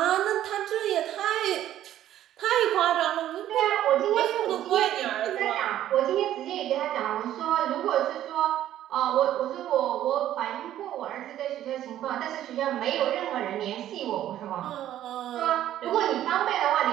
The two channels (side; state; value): left; quieter; 12.3 dB